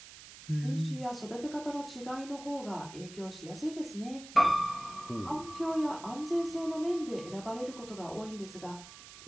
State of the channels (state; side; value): noise; right; hiss, 16 dB below the sound